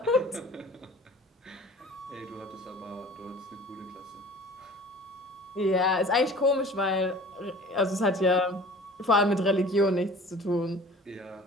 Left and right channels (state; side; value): normal; both; correlation 0.45